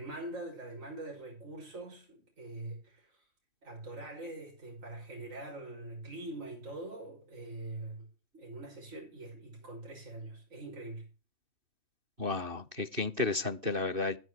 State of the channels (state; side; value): late; left; 2.6 ms